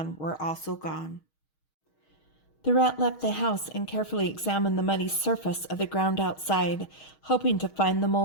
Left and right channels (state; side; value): late; right; 6.4 ms